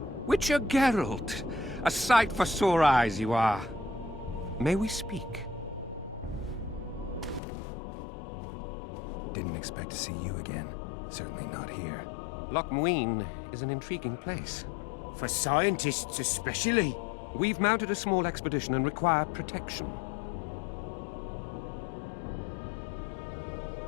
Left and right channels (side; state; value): right; drops out; at 7.4 s